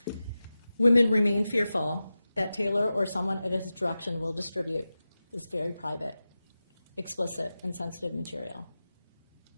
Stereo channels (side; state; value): both; inverted; correlation -0.94